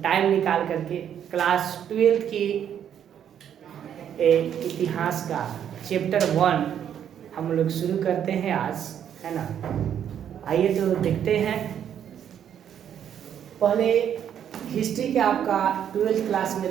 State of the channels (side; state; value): left; quieter; 9.3 dB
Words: टाइम निकाल करके क्लास 12 की इतिहास का चैप्टर 1 हम लोग शुरू करते हैं आज, है ना। आइए तो देखते हैं। पहले हिस्ट्री के आपका 12th क्लास